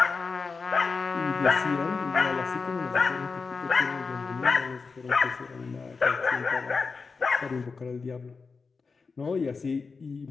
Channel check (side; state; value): right; quieter; 4.7 dB